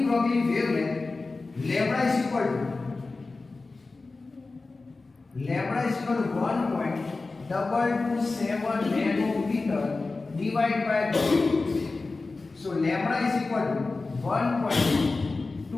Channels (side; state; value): right; quieter; 3.6 dB